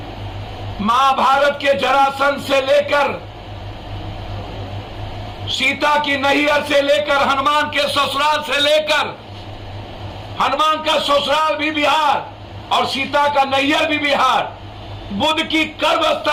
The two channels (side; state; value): both; identical; correlation 1.00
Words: महाभारत के जरासंध से लेकर, सीता की नैहर से लेकर, हनुमान के ससुराल से लेकर, हनुमान का ससुराल भी बिहार और सीता का नैहर भी बिहार, बुद्ध की